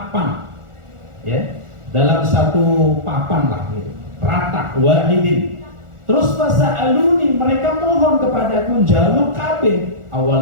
ya, dalam satu papan lah gitu, rata, wahidin. Terus fasa'aluni, mereka mohon kepadaku, jaluk kabeh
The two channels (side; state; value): left; late; 1.4 ms